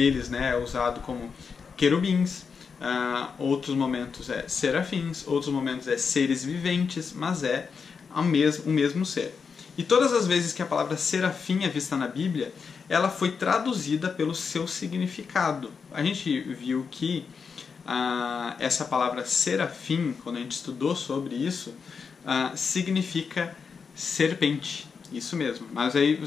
né, é usado como querubins, outros momentos é serafins, outros momentos é seres viventes, mas é o mesmo ser. E todas as vezes que a palavra serafim é vista na Bíblia, ela foi traduzida pelo seu significado. A gente viu que essa palavra serafim, quando a gente estudou sobre isso, significa serpente. Isso mesmo. Mas aí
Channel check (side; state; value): right; quieter; 5.7 dB